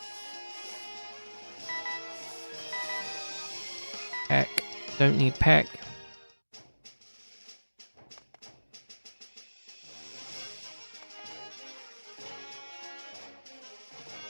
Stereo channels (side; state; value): both; inverted; correlation -1.00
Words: Peck. Don't need Peck.